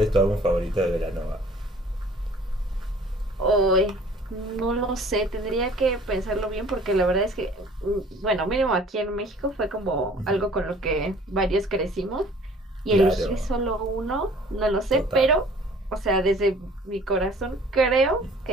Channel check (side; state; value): both; normal; correlation 0.51